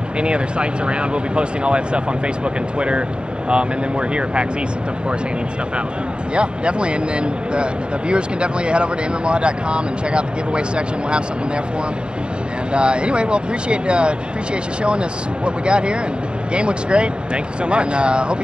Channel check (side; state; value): left; late; 0.051 ms